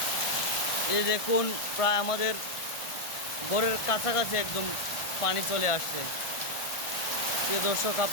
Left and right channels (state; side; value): late; right; 1.5 ms